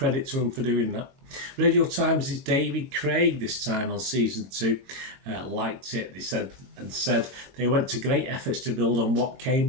to them for doing that. Radio Times' David Craig this time on season 2 liked it. They said they went to great efforts to build on what came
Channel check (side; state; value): left; late; 21 ms